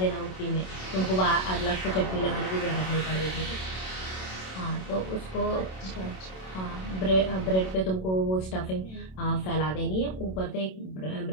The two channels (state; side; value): late; right; 27 ms